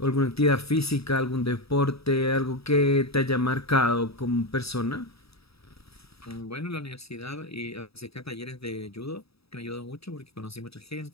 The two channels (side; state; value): right; late; 0.77 ms